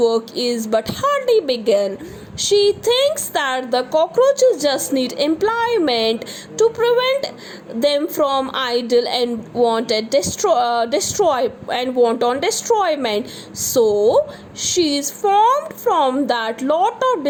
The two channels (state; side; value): identical; both; correlation 1.00